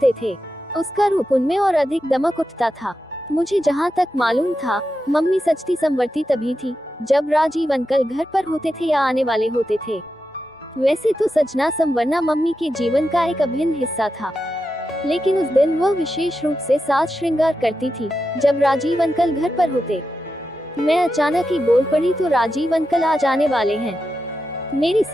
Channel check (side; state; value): both; normal; correlation 0.89